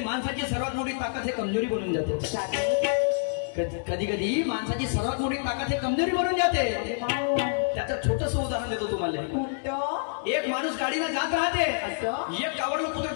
माणसाची सर्वात मोठी ताकद हे कमजोरी बनून जाते। कधी कधी माणसाची सर्वात मोठी ताकद हे कमजोरी बनून जाते। त्याचं छोटस उदाहरण देतो तुम्हाला। एक माणूस गाडीने जात राहते एक कावडलं कुत्र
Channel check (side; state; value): right; silent; digital silence